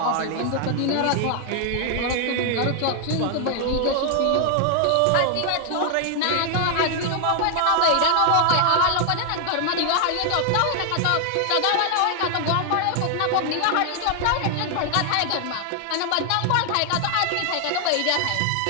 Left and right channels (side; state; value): both; different; correlation 0.00